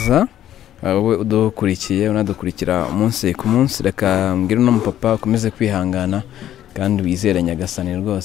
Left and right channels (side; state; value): right; quieter; 11.8 dB